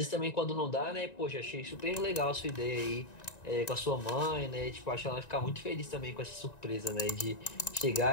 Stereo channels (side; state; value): right; late; 1.9 ms